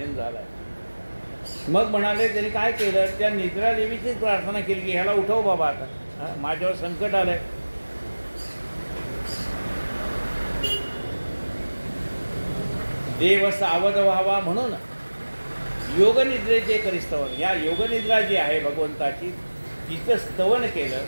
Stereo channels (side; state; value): both; inverted; correlation -1.00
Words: झालाय. मग म्हणाले त्यांनी काय केलं, त्या निद्रा देवीचीच प्रार्थना केली की ह्याला उठव बाबा, आता माझ्यावर संकट आलंय. देव सावध व्हावा म्हणून योगनिद्रेचे करी स्तवन. या योगनिद्रा जी आहे भगवंताची तिचं स्तवन केलं